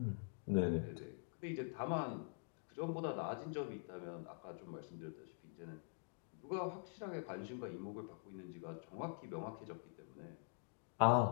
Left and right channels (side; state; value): right; silent; digital silence